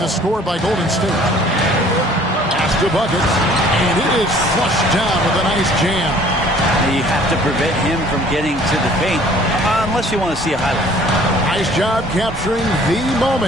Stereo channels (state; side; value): normal; both; correlation 0.54